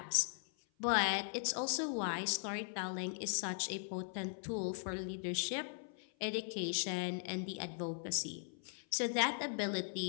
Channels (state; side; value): silent; right; 52 dB below the other